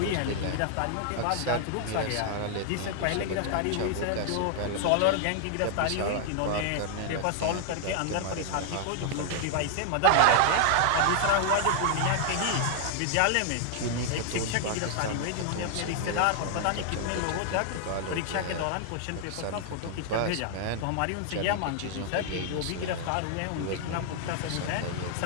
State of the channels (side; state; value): both; different; correlation 0.00